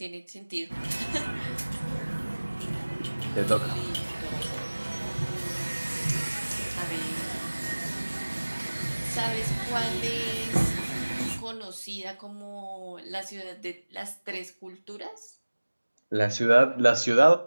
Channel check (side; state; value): both; inverted; correlation -1.00